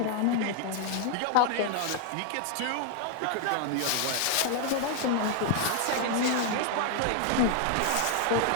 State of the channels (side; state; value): both; different; correlation 0.00